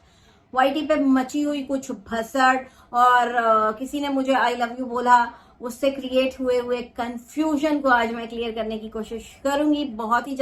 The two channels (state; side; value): identical; both; correlation 1.00